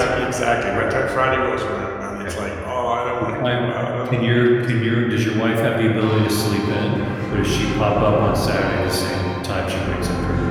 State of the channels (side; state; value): both; identical; correlation 1.00